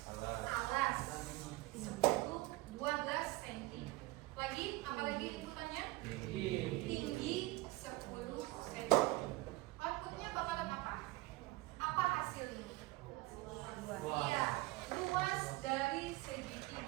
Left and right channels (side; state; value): left; quieter; 20.2 dB